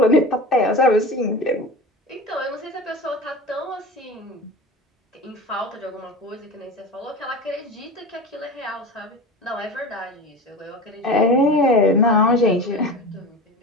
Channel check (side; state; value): both; normal; correlation 0.31